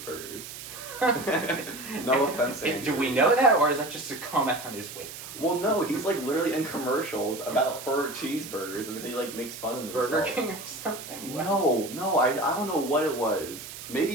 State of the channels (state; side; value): noise; right; hiss, 12 dB below the sound